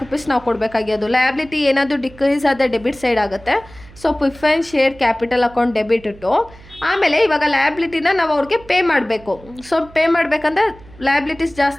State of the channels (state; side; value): noise; right; hum, 22 dB below the sound